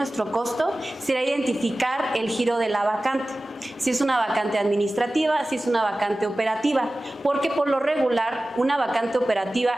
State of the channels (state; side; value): normal; both; correlation 0.96